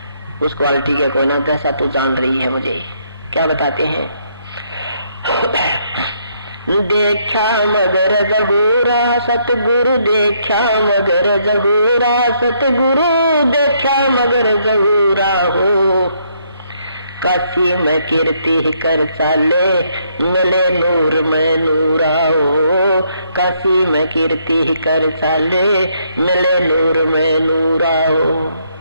उस क्वालिटी के कोई ना, जैसा तू जान रही है मुझे। क्या बताते हैं, देखा मगर जहूरा सतगुरु, देखा मगर जहूरा सतगुरु, देखा मगर जहूरा हो। काशी में कीर्ति कर चाले, मिले नूर में नूरा हो। काशी में कीर्ति कर चाले, मिले नूर में नूरा हो।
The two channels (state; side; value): inverted; both; correlation -0.72